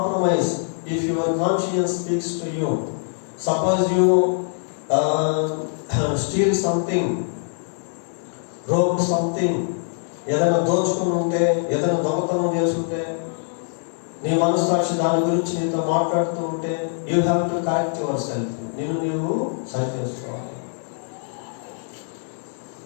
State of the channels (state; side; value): silent; right; 63 dB below the other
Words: if your conscience speaks to you. Suppose you steel something, robe something, ఏదైనా దోచుకుని ఉంటే, ఏదైనా దొంగతనం చేసుకుంటే, నీ మనస్సాక్షి దాని గురించి నీతో మాట్లాడుతూ ఉంటే, you have to correct your self. నీవు సరి చేసుకోవాలి.